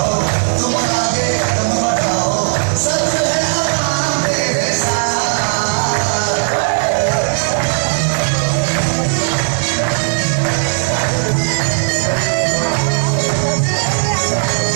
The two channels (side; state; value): left; silent; digital silence